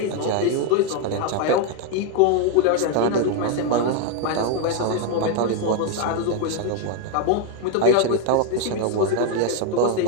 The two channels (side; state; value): both; different; correlation 0.01